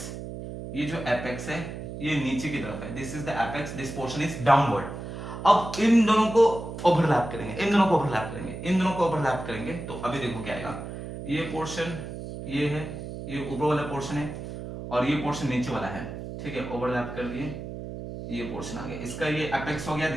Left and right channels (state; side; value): noise; right; hum, 8 dB below the sound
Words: ये जो एपेक्स है ये नीचे की तरफ है, this is the apex, this portion is downward. अब इन दोनों को ओवरलैप करेंगे, इन दोनों को ओवरलैप करेंगे, इन दोनों को ओवरलैप करेंगे, तो अभी देखो क्या आएगा। ये पोर्शन ये है, ये ऊपर वाला पोर्शन है, और ये पोर्शन नीचे वाला है, ठीक है। ओवरलैप कर दिए, ये पोर्शन आ गया, इसका ये एपेक्स हो गया,